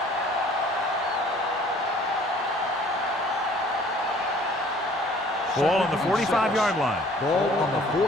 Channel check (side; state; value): both; normal; correlation 0.54